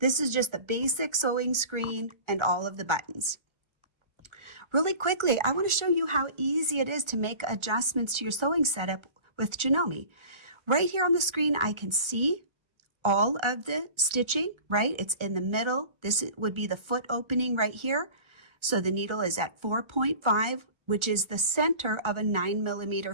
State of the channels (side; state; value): left; late; 1.4 ms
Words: is just the basic sewing screen and all of the buttons. Really quickly, I want to show you how easy it is to make adjustments to your sewing setup with Janome. Right here on the screen, I can see all of the stitching, right? It's in the middle. This would be the foot opening right here. So the needle is at 4.5, which is the center of a